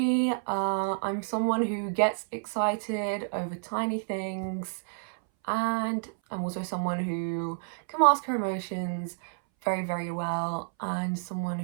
I'm someone who gets excited over tiny things, and I'm also someone who can mask her emotions very well, and someone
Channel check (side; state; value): left; silent; 58 dB below the other